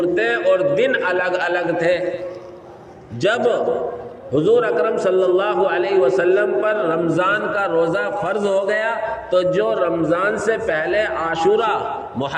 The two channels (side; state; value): both; identical; correlation 1.00